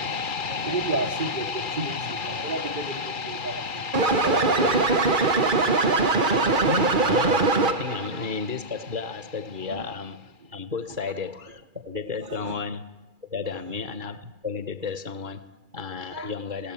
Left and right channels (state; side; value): late; left; 2.3 ms